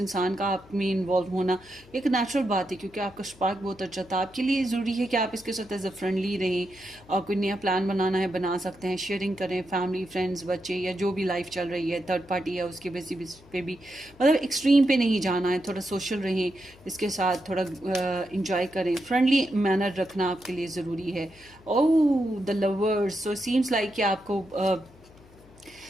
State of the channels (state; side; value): noise; left; hum, 25 dB below the sound